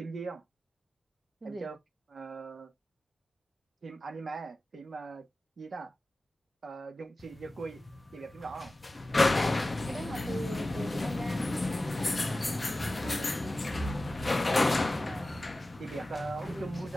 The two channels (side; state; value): both; normal; correlation 0.95